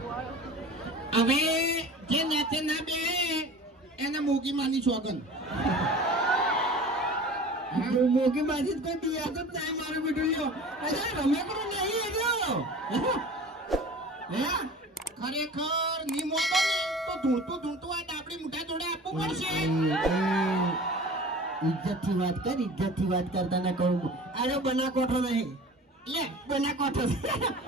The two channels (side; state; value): both; normal; correlation 0.40